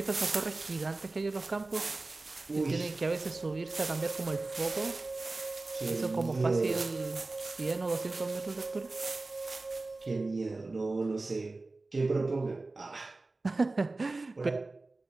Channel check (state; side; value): quieter; left; 3.3 dB